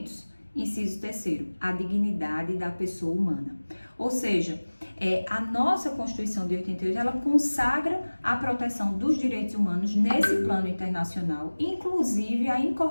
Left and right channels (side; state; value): both; inverted; correlation -1.00